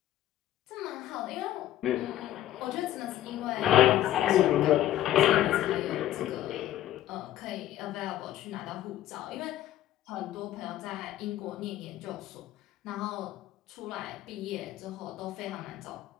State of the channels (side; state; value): right; quieter; 13.2 dB